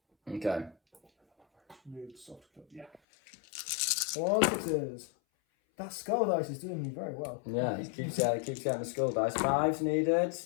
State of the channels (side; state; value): right; drops out; at 3.0 s